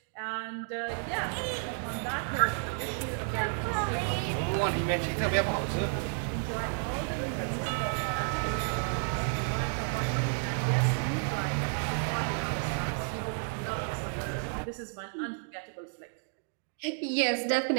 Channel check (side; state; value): left; silent; 56 dB below the other